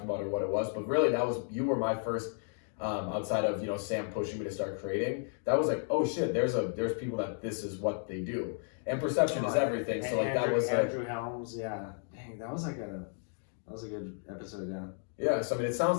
about or what it was, but really you were my first outside of Sam pushing me to start creating. That was like, oh shit, there's people that this is what they do, and perception is everything. So like Andrew Helms, yeah, dang, that was like That was a good episode, yeah. Yeah, so I mean, it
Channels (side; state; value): right; silent; 56 dB below the other